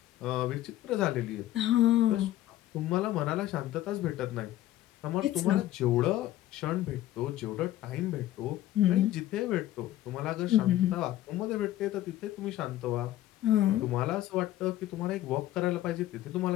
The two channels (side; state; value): right; quieter; 14.1 dB